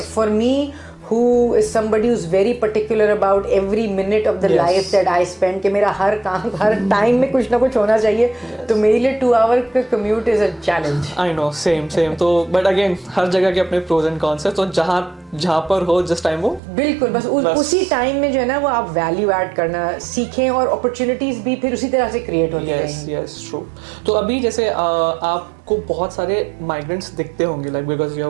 for me who is somebody who's very particular about every minute of the life that I spend, कि मेरा हर काम हर टाइम में कुछ ना कुछ होना चाहिए, तो मेरे लिए 2 hour का commute is a challenge. I know, same तो but again हर जगह के अपने pros and cons है, तो जहाँ पर हो जिस टाइम वो बिल्कुल बस उसी टाइम में जो है ना वो आप वैल्यू ऐड करना सीखें और अपॉर्चुनिटीज भी फिर उसी तरह से क्रिएट होती रहेंगी। Yes true. तो अभी जैसे आपको बहुत सारे माइग्रेंट्स दिखते होंगे like because you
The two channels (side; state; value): left; drops out; at 16.6 s